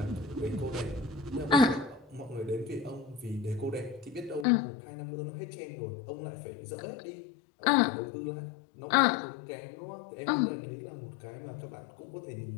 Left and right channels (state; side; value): drops out; right; at 4.5 s